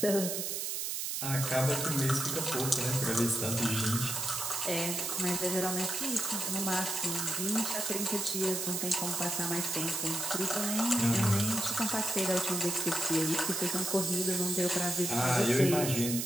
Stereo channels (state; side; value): noise; right; hiss, 2 dB below the sound